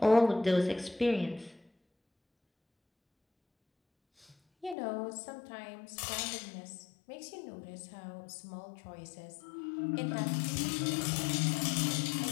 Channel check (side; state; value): right; drops out; at 4.8 s